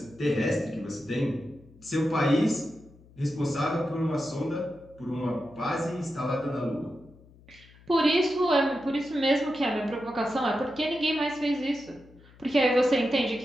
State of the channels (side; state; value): left; noise; hum, 25 dB below the sound